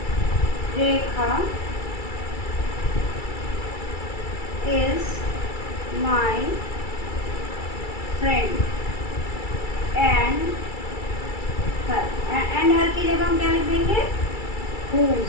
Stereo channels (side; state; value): right; late; 2.3 ms